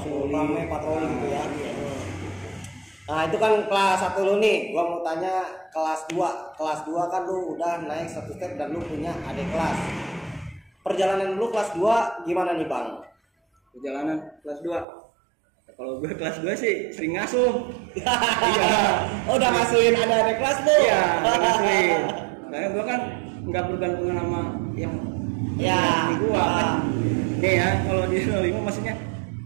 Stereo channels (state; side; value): drops out; left; at 14.9 s